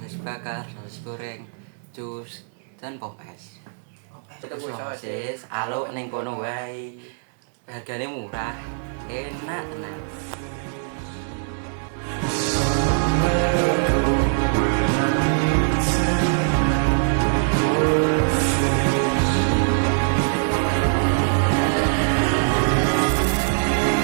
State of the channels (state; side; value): silent; left; digital silence